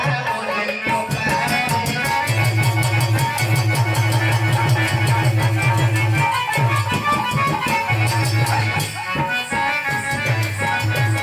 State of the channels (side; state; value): both; identical; correlation 1.00